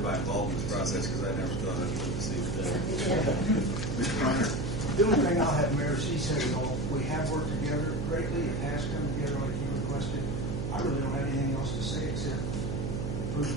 involved in this process because I never thought I'd live to see the day. Mr. Reiner. The only thing I'll have, Mayor, she said it all. We have worked together greatly. It has come together like you requested. I really don't have anything else to say except approve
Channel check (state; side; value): noise; right; hum, 2 dB below the sound